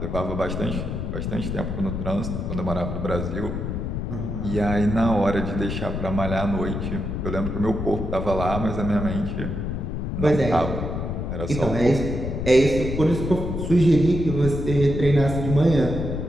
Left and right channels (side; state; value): left; noise; rumble, 3 dB below the sound